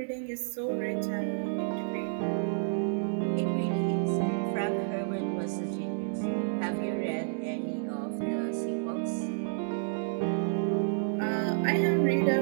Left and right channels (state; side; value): silent; left; digital silence